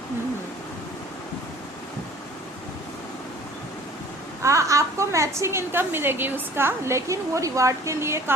आपको मैचिंग इनकम मिलेगी उसका, लेकिन वो रिवार्ड के लिए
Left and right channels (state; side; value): normal; both; correlation 0.50